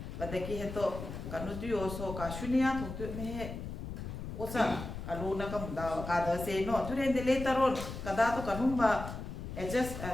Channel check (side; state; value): left; noise; rumble, 8 dB below the sound